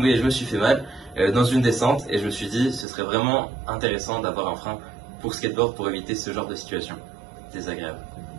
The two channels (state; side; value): drops out; left; at 2.9 s